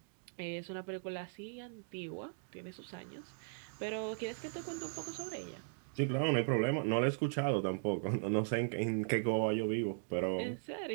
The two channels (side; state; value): left; silent; digital silence